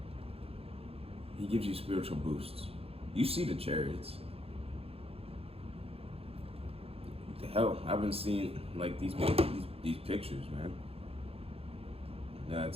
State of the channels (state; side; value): late; left; 0.28 ms